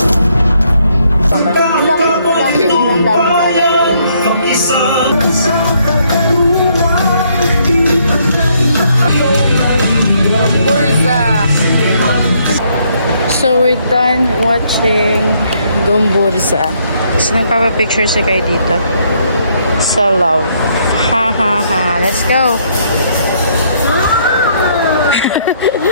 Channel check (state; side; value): inverted; both; correlation -0.70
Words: Gomburza. So we're done watching Gomburza. So nagpapapicture si Kai dito. Sa love. Ha ha ha. Let's go.